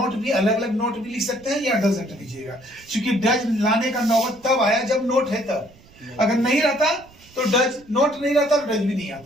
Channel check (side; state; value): right; noise; rumble, 26 dB below the sound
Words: भी अलग अलग नोट भी लिख सकते हैं या डजंट लीजिएगा। चूंकि डज लाने का नौबत तब आया जब नोट है तब, अगर नहीं रहता तो डज, नोट नहीं रहता तो डज भी नहीं